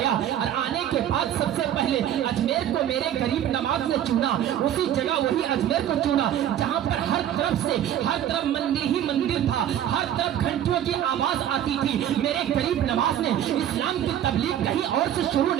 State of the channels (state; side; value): quieter; left; 11.0 dB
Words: और आने के बाद सबसे पहले अजमेर को मेरे गरीब नमाज ने चुना, उसी जगह वही अजमेर को चुना जहाँ पर हर तरफ मंदिर ही मंदिर था, हर तरफ घंटियों की आवाज आती थी। मेरे गरीब नवाज ने इस्लाम की तबलीग कहीं और से शुरू